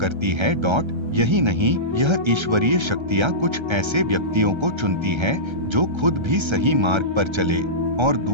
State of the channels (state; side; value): late; left; 1.3 ms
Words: है। यही नहीं, यह ईश्वरीय शक्तियां कुछ ऐसे व्यक्तियों को चुनती है जो खुद भी सही मार्ग पर चले और